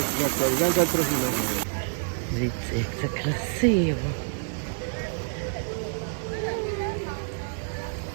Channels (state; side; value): silent; left; digital silence